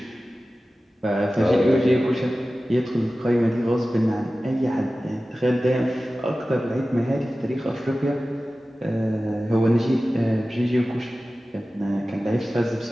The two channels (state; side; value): normal; both; correlation 0.96